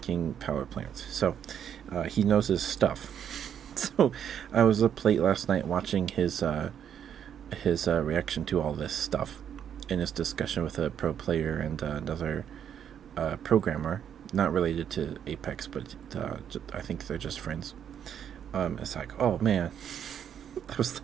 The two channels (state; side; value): quieter; left; 8.9 dB